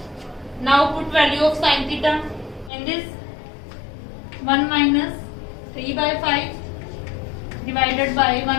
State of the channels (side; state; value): right; drops out; at 2.7 s